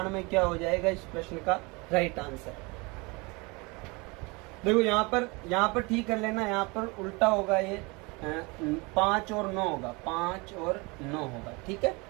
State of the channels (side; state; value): left; quieter; 27.0 dB